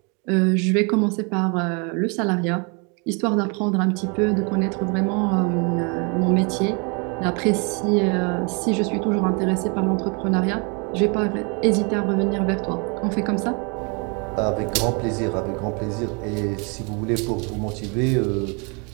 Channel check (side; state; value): left; quieter; 33.6 dB